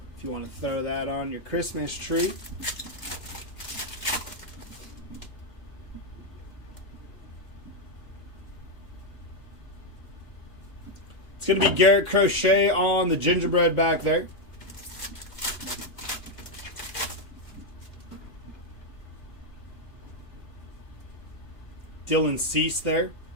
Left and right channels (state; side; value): late; right; 2.9 ms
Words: If you want to throw that on your Christmas tree. It's going to be Garrett Crochet on the gingerbread back there. Dylan Cease there.